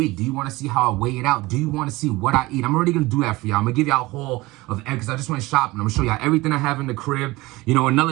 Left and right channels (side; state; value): left; quieter; 20.7 dB